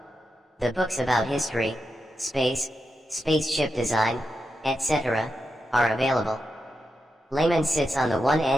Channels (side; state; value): both; normal; correlation 0.87